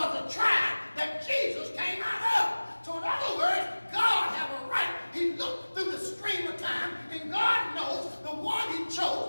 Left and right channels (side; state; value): both; inverted; correlation -1.00